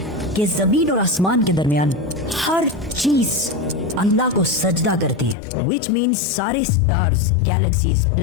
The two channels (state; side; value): drops out; right; at 5.4 s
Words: कि जमीन और आसमान के दरमियान हर चीज अल्लाह को सजदा करती है, विच मीन्स सारे stars, galaxies,